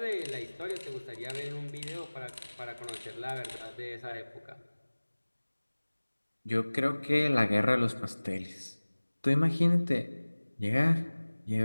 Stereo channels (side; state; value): both; inverted; correlation -1.00